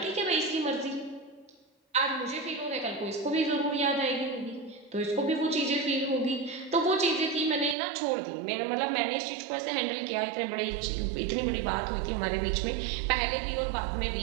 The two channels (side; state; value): left; drops out; at 7.8 s